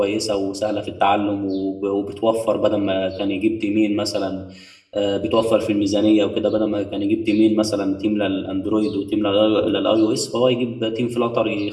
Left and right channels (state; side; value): identical; both; correlation 1.00